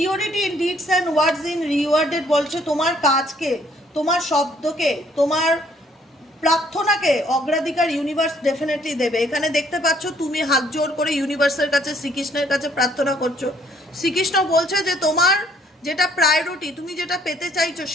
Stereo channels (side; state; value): both; normal; correlation 0.64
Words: in deeds and words in rewarded বলছে তোমার কাজকে, তোমার শব্দকে, তোমার প্রার্থনাকে অগ্রাধিকার ইউনিভার্স ডেফিনেটলি দেবে। এখানে দেখতে পাচ্ছ তুমি হাত জোর করে ইউনিভার্সের কাছে, শ্রীকৃষ্ণের কাছে প্রার্থনা করছো। শ্রীকৃষ্ণ বলছে যে তোমার যেটা প্রায়োরিটি, তুমি যেটা পেতে চাইছো,